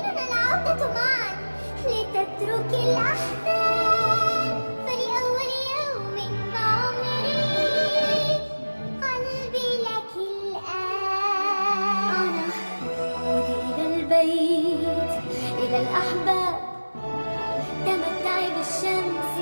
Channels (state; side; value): inverted; both; correlation -1.00